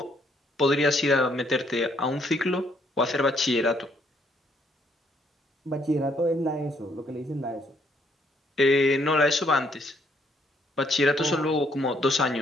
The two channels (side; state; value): both; normal; correlation 0.70